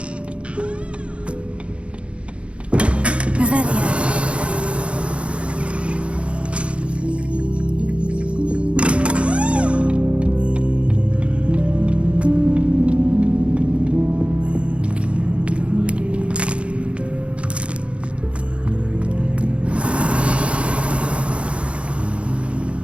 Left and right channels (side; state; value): left; late; 0.060 ms